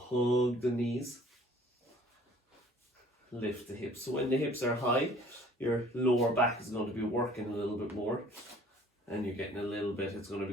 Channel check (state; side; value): normal; both; correlation 0.53